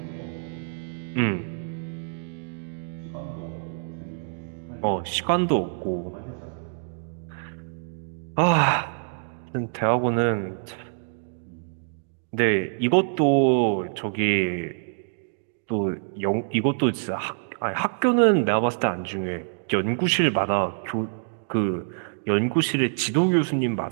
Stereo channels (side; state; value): left; silent; digital silence